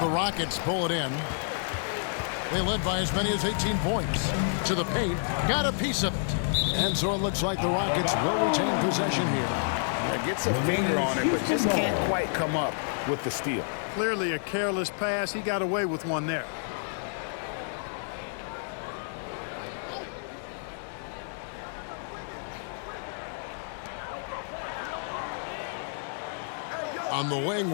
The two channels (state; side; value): silent; right; 58 dB below the other